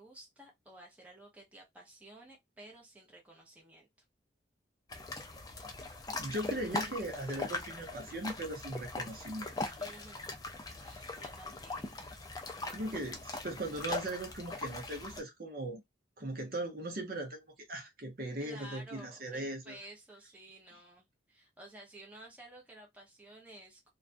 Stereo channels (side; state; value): both; normal; correlation 0.28